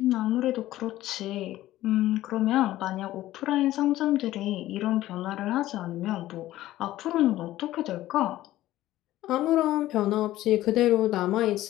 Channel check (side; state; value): right; quieter; 15.0 dB